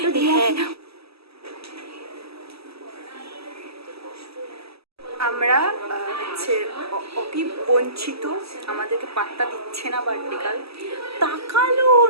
আমরা হচ্ছে অতি বঞ্চিত, আমাদেরকে পাত্তা দিচ্ছে না। বার্থডে তাকালো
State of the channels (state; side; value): late; left; 0.77 ms